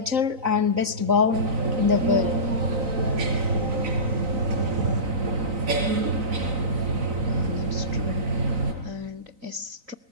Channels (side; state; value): left; late; 3.9 ms